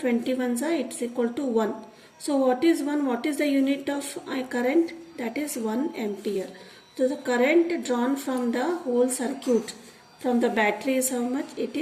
it's equal to 1. So what is 1? What is the unit of current? That is 1 ampere. So the current drawn from the whole circuit from the battery is how much? It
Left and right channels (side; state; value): both; identical; correlation 1.00